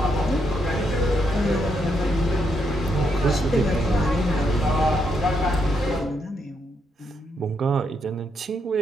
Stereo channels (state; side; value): normal; both; correlation 0.78